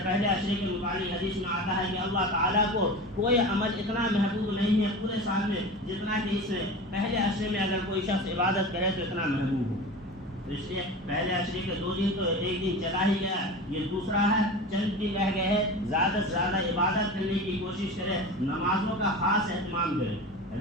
عشرے کے متعلق حدیث میں آتا ہے کہ اللہ تعالیٰ کو کوئی عمل اتنا محبوب نہیں ہے پورے سال میں جتنا کہ اس پہلے عشرے میں اگر کوئی شخص عبادت کرے تو اتنا محبوب ہو۔ اس لیے پہلے عشرے کے 2 دن تو ایک دن چلا ہی گیا، یہ دوسرا ہے، چند دن رہ گئے ہیں، زیادہ سے زیادہ عبادت کرنے کی کوشش کریں، نمازوں کا خاص اہتمام کریں۔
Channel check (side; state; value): both; normal; correlation 0.31